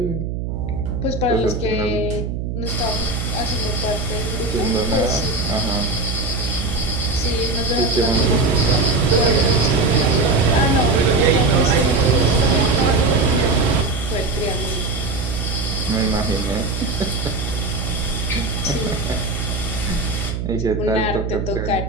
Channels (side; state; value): right; noise; hum, 4 dB below the sound